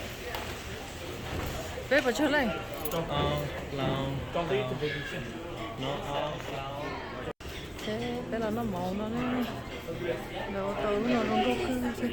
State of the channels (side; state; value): both; identical; correlation 1.00